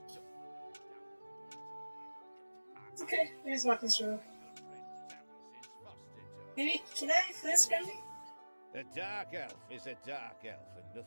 stuck. Okay, let's walk this road. Maybe, can I flinch Grimly? A dark elf is a dark elf, and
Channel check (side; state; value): both; inverted; correlation -1.00